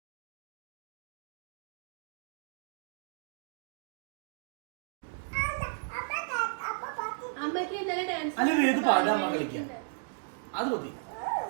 അല്ല വേദ് പാടുക, അമ്മ കളിക്കുക. അത് മതി.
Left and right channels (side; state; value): left; silent; digital silence